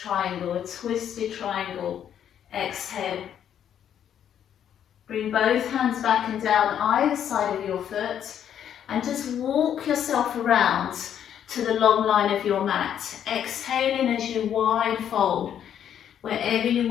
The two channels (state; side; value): quieter; right; 9.5 dB